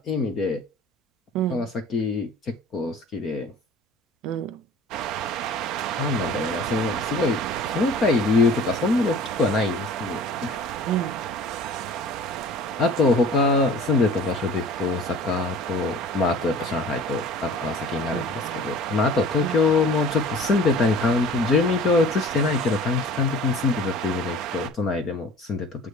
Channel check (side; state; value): both; normal; correlation 0.44